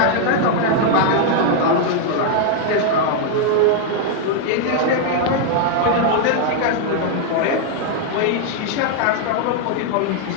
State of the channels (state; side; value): different; both; correlation 0.00